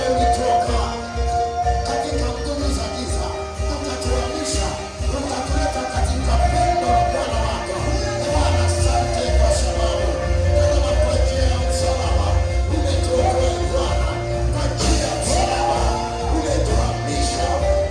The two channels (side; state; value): both; identical; correlation 1.00